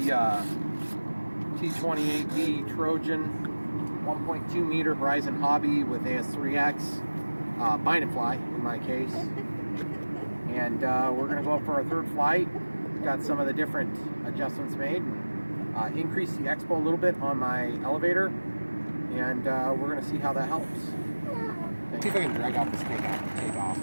T-28B Trojan 1.2 meter Horizon Hobby with AS3X, bind and fly in my case. And we're going to go up for our third flight. Got some of the different adjustments made. Increase the expo a little bit on my elevator, and we're going to see how that helps. See if I can drag out this takeoff.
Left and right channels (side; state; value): both; inverted; correlation -1.00